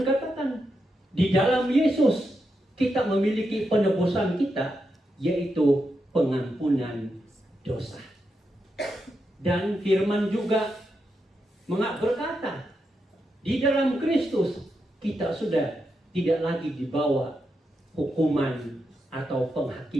katakan, di dalam Yesus kita memiliki penebusan kita, yaitu pengampunan dosa. Dan firman juga berkata, di dalam Kristus kita sudah tidak lagi dibawa hukuman atau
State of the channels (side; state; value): both; normal; correlation 0.85